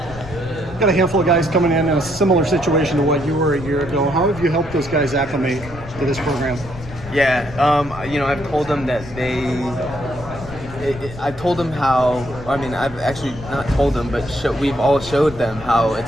Got a handful of guys coming in a similar situation to what you were a year ago. How have you helped those guys acclimate to this program? Yeah, you know, I've told them that I told them how, I mean, I've actually not told them, but we've all showed them how it's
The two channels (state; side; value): noise; left; rumble, 14 dB below the sound